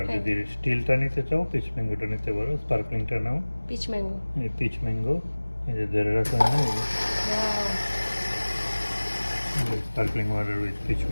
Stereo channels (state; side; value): inverted; both; correlation -1.00